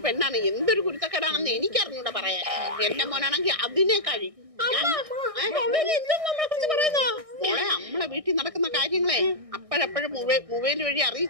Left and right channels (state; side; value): late; left; 1.6 ms